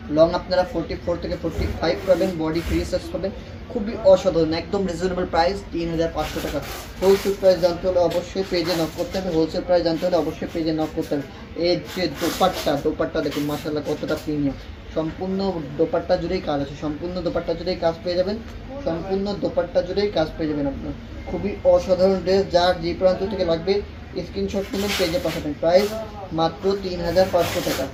লং আপনারা 44 থেকে 45 পাবেন, বডি ফ্রি সাইজ পাবেন। খুবই অসাধারণ, একদম রিজনেবল প্রাইস 3500 টাকা। হোলসেল প্রাইস জানতে হলে অবশ্যই পেজে নক করতে হবে, হোলসেল প্রাইস জানতে হলে অবশ্যই পেজে নক করতে হবে। এর যে দোপাট্টা দেখুন মাশাআল্লাহ কতটা প্রিমিয়াম। সম্পূর্ণ দোপাট্টা জুড়েই কাজ আছে, সম্পূর্ণ দোপাট্টা জুড়েই কাজ পেয়ে যাবেন, সম্পূর্ণ দোপাট্টা জুড়েই কাজ পেয়ে যাবেন আপনার। খুবই অসাধারণ ড্রেস, যার যে প্রান্ত থেকে লাগবে স্ক্রিনশট নিয়ে পেজে পাঠাবেন। প্রাইস মাত্র 3500 টাকা।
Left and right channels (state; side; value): identical; both; correlation 1.00